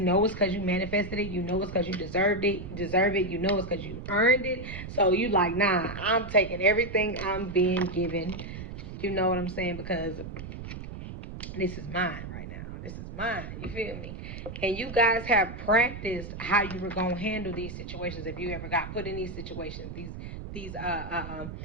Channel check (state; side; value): noise; right; rumble, 9 dB below the sound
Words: it's because you manifested it, you know it's because you deserve it, you know it's because you earned it. So you like, nah, I'm taking everything I'm being given. You know what I'm saying? Because this is mine right now. This is mine. You feel me? And you guys have practiced how you were gonna handle these situations if you ever got put in these situations. These